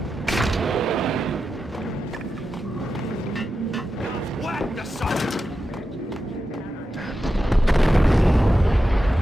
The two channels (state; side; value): normal; both; correlation 0.90